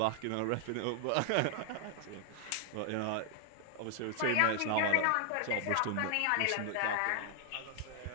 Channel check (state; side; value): different; both; correlation 0.00